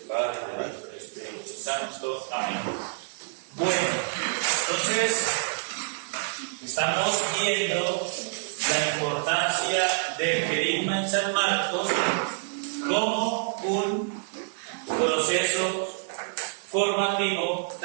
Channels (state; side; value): silent; left; digital silence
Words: Padre, del Hijo, del Espíritu Santo. Amén. Bueno, entonces estamos viendo la importancia del querigma en San Marcos como un proceso formativo,